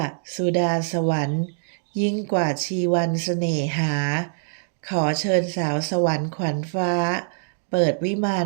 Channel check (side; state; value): left; silent; digital silence